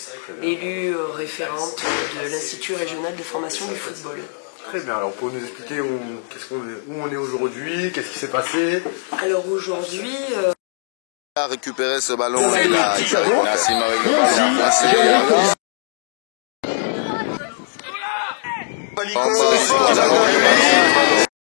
élue référente de l'Institut régional de formation du football. Très bien, alors pour nous expliquer où on est aujourd'hui, qu'est-ce qui s'est passé? Alors aujourd'hui... a récupéré ce ballon, il a Nassim avec le ballon.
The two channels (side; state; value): right; silent; digital silence